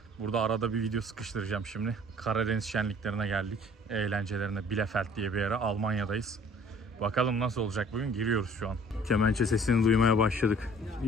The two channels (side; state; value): both; normal; correlation 0.53